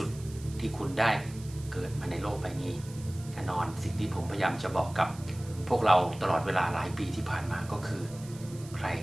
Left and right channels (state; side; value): noise; right; hiss, 19 dB below the sound